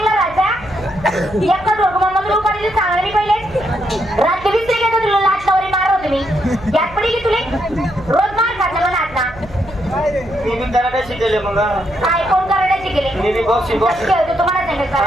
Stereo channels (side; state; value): right; noise; hum, 19 dB below the sound